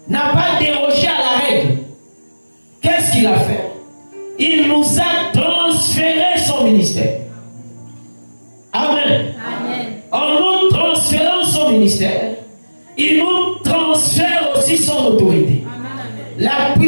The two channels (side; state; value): both; inverted; correlation -1.00